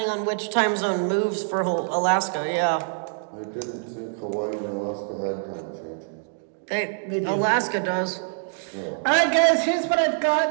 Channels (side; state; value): left; silent; digital silence